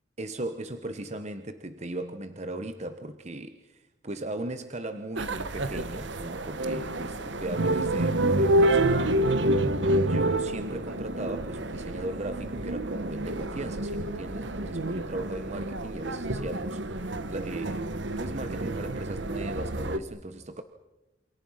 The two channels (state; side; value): normal; both; correlation 0.14